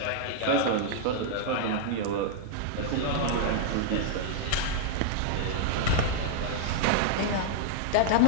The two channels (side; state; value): both; different; correlation -0.01